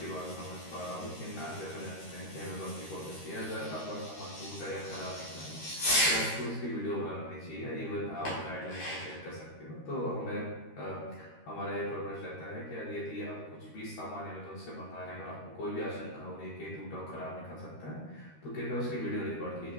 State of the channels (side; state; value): right; late; 13 ms